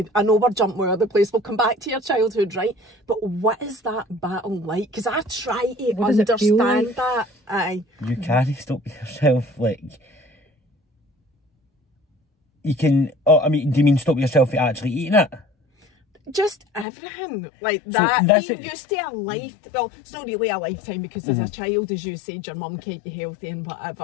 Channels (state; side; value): drops out; right; at 16.9 s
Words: I know we're jumping all over the place. We'll come back to your childhood, right? But what is that battle like? Because I try to understand that. You can't stop yourself. Like, you can. Oh, I mean, do you mean stop yourself from actually eating it? just everything like that. Being used to a life, well, it's not really a lifetime because as a child, as you said, your mum kept you healthy and